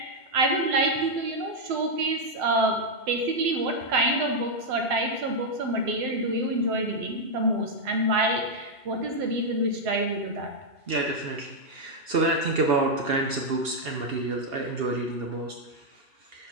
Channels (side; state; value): left; late; 2.8 ms